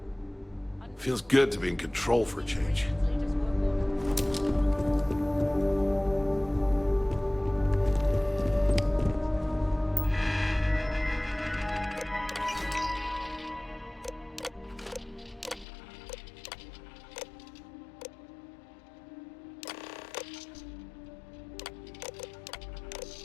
Feels good to be in control for a change.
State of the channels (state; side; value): drops out; right; at 15.7 s